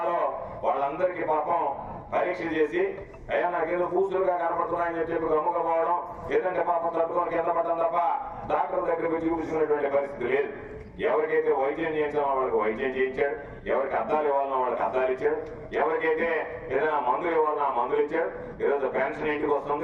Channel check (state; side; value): identical; both; correlation 1.00